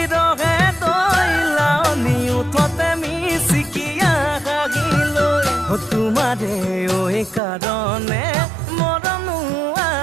ৰহে দৈ লাউনি উঠতে মিচিকিয়া হাগিলৈ তোমাৰে কাৰণে মৰমো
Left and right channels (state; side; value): drops out; left; at 7.4 s